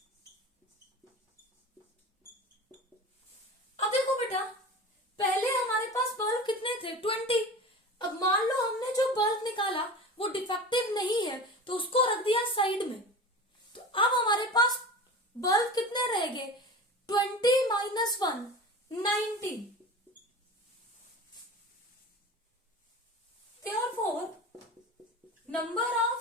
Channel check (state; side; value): normal; both; correlation 0.32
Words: अब देखो बेटा, पहले हमारे पास बल्ब कितने थे? 20। अब मान लो हमने जो बल्ब निकाला वो डिफेक्टिव नहीं है तो उसको रख दिया साइड में, तो अब हमारे पास बल्ब कितने रह गए? 20 minus 1, 19। Therefore, number of